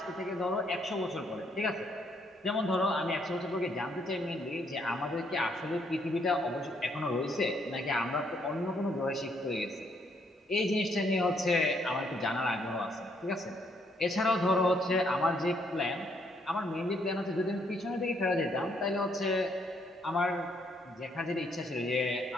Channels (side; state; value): both; normal; correlation 0.71